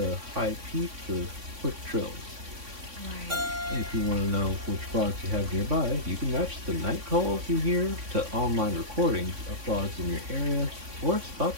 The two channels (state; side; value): late; left; 3.6 ms